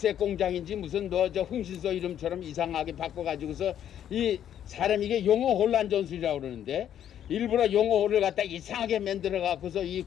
공장인지 무슨 흥신소 이름처럼 이상하게 바꿔가지고서 이 사람 이게 용어 혼란 전술이라고 그러는데 일부러 용어를 갖다 이상하게 만들어 갖고서 이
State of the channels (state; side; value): quieter; right; 10.2 dB